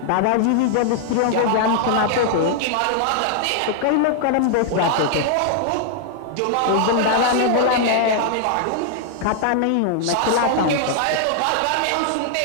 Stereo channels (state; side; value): different; both; correlation 0.00